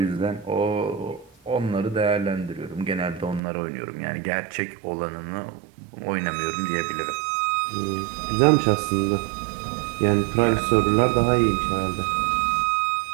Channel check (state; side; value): drops out; left; at 3.4 s